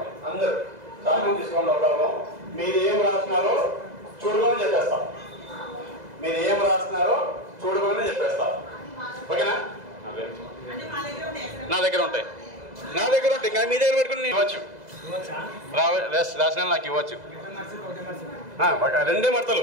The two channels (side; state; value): left; late; 2.0 ms